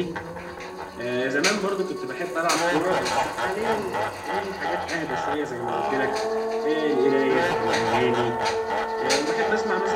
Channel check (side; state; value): both; identical; correlation 1.00